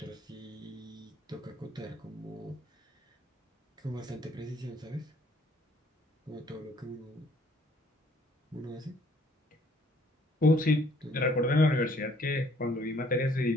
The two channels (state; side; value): normal; both; correlation 0.62